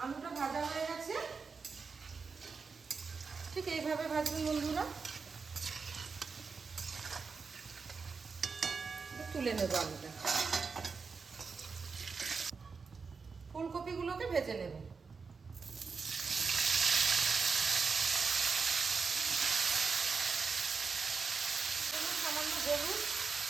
আলুটা ভাজা হয়ে গেছে, ঠিক এইভাবে ভাজবেন বন্ধুরা। তুলে নেব আলুটা। ফুলকপিগুলোকে ভেজে নেব। সামান্য হলুদ,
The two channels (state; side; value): quieter; left; 5.0 dB